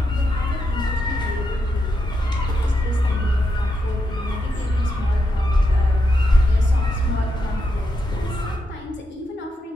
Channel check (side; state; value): both; normal; correlation 0.84